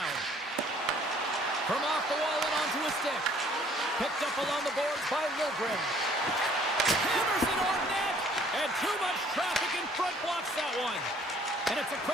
From off the wall and onto a stick. Picked up along the boards by Liljegren. Hammers it on net. And too much traffic in front blocks that one. And it's a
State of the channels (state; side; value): normal; both; correlation 0.58